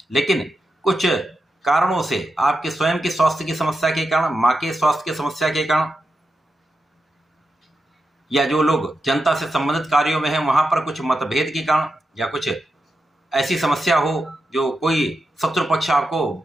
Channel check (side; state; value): both; normal; correlation 0.88